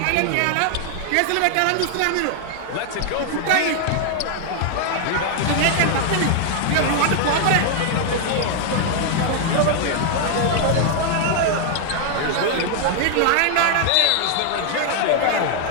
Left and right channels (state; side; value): different; both; correlation 0.00